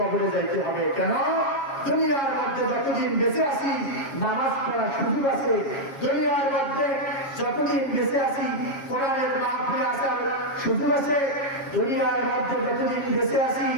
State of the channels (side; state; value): right; late; 7.4 ms